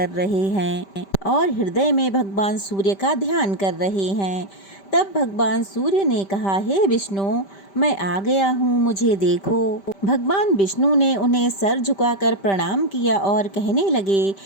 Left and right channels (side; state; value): right; late; 5.1 ms